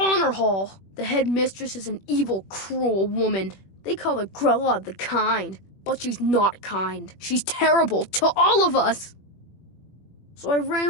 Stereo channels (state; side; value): late; right; 21 ms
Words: Hall. The headmistress is an evil, cruel woman. They call her Grella the Kind, but she's not kind. She's terrible to all of us. So I ran